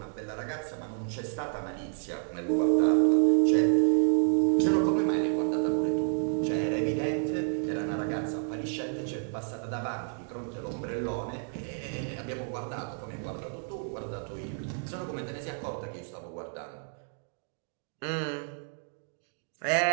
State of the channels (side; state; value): left; silent; 58 dB below the other